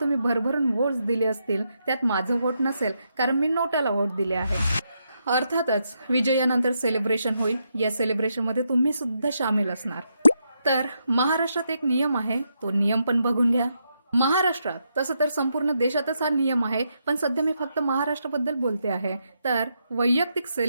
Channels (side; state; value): both; inverted; correlation -0.81